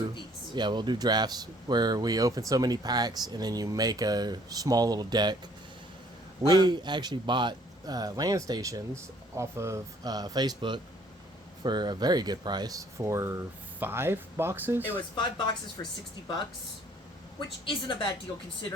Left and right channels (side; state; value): both; normal; correlation 0.60